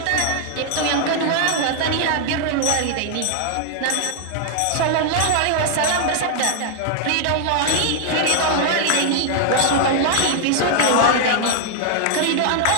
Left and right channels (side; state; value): both; different; correlation 0.00